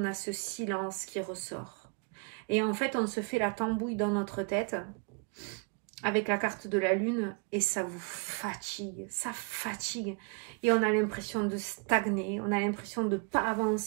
a ce silence qui ressort. Et en fait, on se fait la tambouille dans notre tête avec la carte de la lune et ça vous fatigue. Ça fatigue. Et on a l'impression de stagner. On a l'impression de ne pas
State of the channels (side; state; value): left; quieter; 36.8 dB